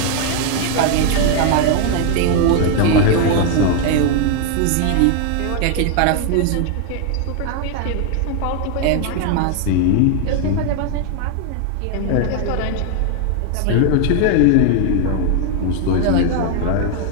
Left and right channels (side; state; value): both; different; correlation 0.00